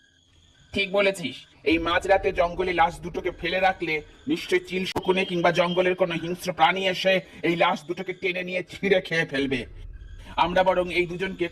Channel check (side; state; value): both; identical; correlation 1.00